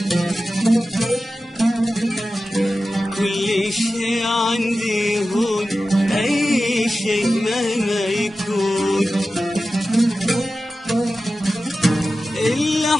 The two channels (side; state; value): both; normal; correlation 0.94